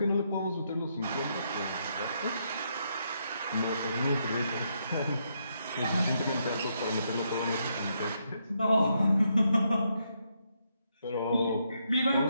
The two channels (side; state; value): both; inverted; correlation -0.78